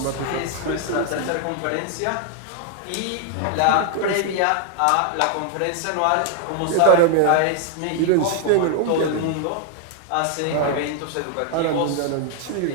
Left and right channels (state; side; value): different; both; correlation 0.00